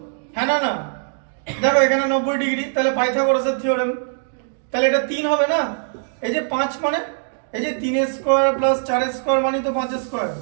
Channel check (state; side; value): silent; left; digital silence